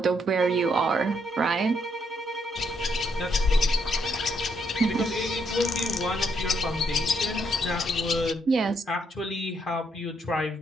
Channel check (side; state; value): both; normal; correlation 0.75